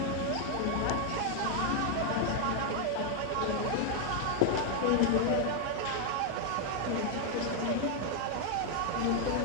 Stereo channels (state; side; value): different; both; correlation 0.00